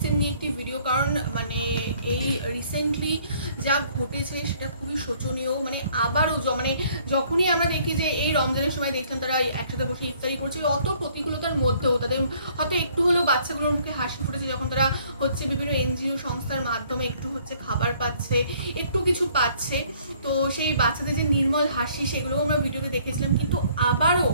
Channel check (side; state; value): both; inverted; correlation -0.61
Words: নিয়ে একটি ভিডিও, কারণ মানে এই রিসেন্টলি যা ঘটেছে সেটা খুবই শোচনীয়। মানে আবারও মানে যখনই আমরা দেখি যে এই রমজানের সময় দেখলাম তারা একসাথে বসে ইফতারি করছে, অত প্রতিকূলতার মধ্যেও তাদের হয়তো একটু হলেও বাচ্চাগুলোর মুখে হাসি ফুটেছে যখন তারা হচ্ছে বিভিন্ন এনজিও সংস্থার মাধ্যমে একটু হচ্ছে খাবার পাচ্ছে, একটু কিছু পাচ্ছে। তো সেই বাচ্চাদের যে নির্মল হাসি সেগুলোও আমরা ভিডিওতে দেখেছিলাম, কিন্তু আবারও